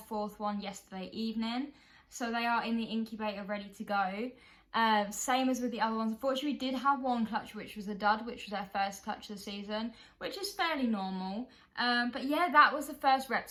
4th one yesterday evening. So they are in the incubator ready to go. Same as with the other ones. Unfortunately, we did have 1 clutch, which was a dud, which was our first clutch of the season, which is fairly normal. But yeah, that was the first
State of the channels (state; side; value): identical; both; correlation 1.00